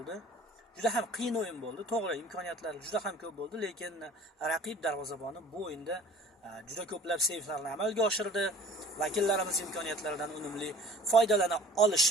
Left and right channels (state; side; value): normal; both; correlation 0.47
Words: Juda ham qiyin o'yin bo'ldi. To'g'ri, imkoniyatlar juda ham ko'p bo'ldi, lekin raqib darvozaboni bu o'yinda juda ko'plab seyflarni amalga oshirdi. Vakillarimiz imkoniyatlaridan unumli foydalana